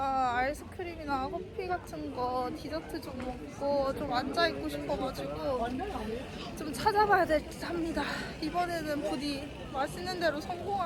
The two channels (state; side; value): identical; both; correlation 1.00